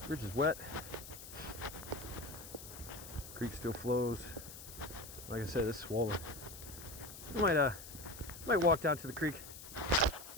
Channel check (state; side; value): noise; left; hiss, 13 dB below the sound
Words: bridge is wet. Creek still flows. Like I said, it's swollen. I might walk down to the creek,